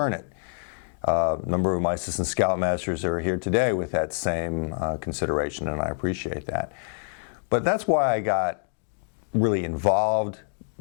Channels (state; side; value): silent; right; digital silence